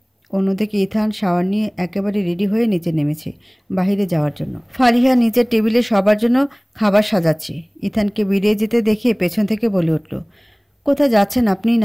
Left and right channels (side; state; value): both; identical; correlation 1.00